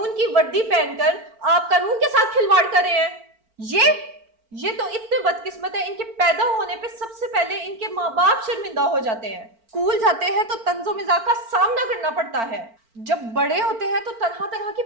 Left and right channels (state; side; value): late; left; 4.4 ms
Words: की वर्दी पहनकर आप कानून के साथ खिलवाड़ कर रहे हैं ये तो इतने बदकिस्मत है इनके पैदा होने पे सबसे पहले इनके माँ बाप शर्मिंदा हो जाते हैं स्कूल जाते हैं तो तंजो मिजाज का सामना करना पड़ता है जब बड़े होते हैं तो तरह तरह